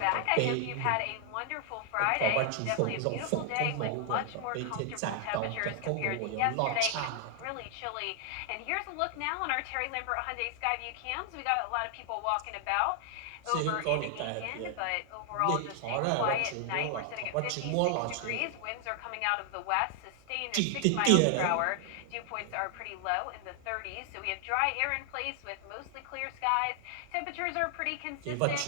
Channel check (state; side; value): different; both; correlation 0.00